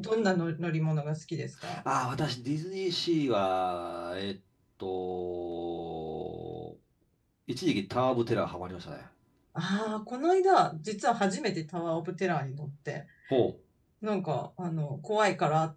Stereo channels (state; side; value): identical; both; correlation 1.00